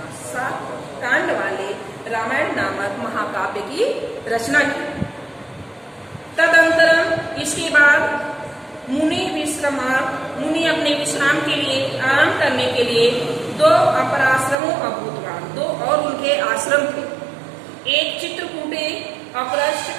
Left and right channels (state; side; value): drops out; left; at 14.6 s